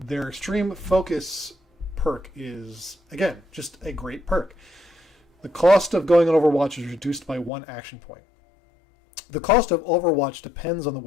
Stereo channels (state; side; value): drops out; right; at 7.5 s